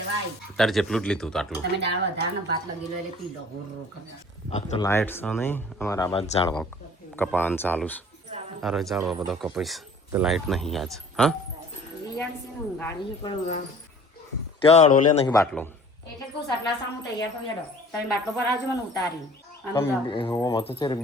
તારે જેટલું જ લીધું તો આટલું તમે દાળ વધારે ને ભાત લગી લો એટલે પી લો હોર આ તો લાઇટ છે નહીં અમારા આ બાદ ઝાડવા કપાવાનું ચાલુ છે અરે ઝાડવા બધો કપાઈશ તો લાઇટ નહીં આજ હા રિયાણ છે ને ગાડી પણ ત્યાં અડોલે નહીં બાટલો એટલે કહું સટલા સામું તૈયાર થઈ હેડો તમે બાટલો પર આવજો મને ઉતારી હું તો છે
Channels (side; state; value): both; normal; correlation 0.49